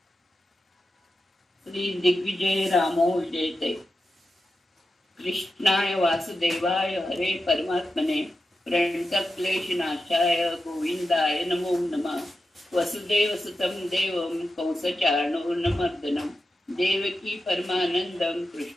श्री दिग्विजय रामो जयते. कृष्णाय वासुदेवाय हरे परमात्मने प्रणतक्लेशनाशाय गोविंदाय नमो नमः. वसुदेवसुतं देवं कंसचाणूरमर्दनं देवकी परमानंदं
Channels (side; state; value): both; normal; correlation 0.90